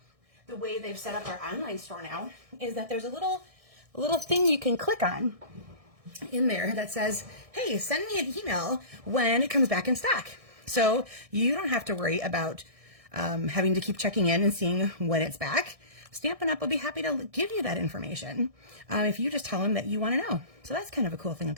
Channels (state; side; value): late; left; 1.6 ms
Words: the way they've set up our online store now is that there's a little thing you can click on in there that says, hey, send me an email when it comes back in stock. So you don't have to worry about having to keep checking in and seeing when it's back. Stampin' Up! Will be happy to give you that information if you just tell them that you want to know. So that's kind of a cool thing that